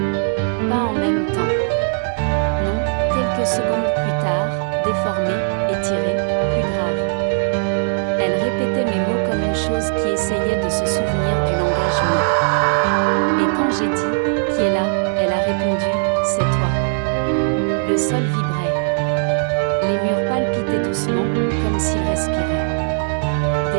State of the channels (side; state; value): left; silent; digital silence